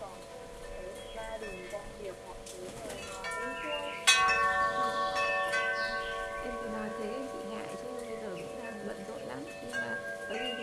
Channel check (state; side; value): identical; both; correlation 1.00